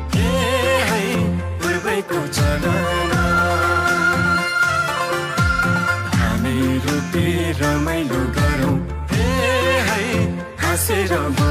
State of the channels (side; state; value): both; identical; correlation 1.00